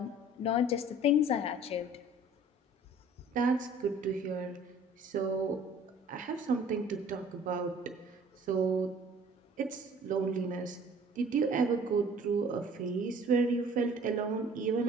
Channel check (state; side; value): normal; both; correlation 0.51